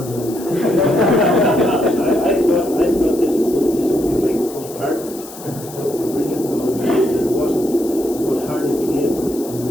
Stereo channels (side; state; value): left; noise; hiss, 16 dB below the sound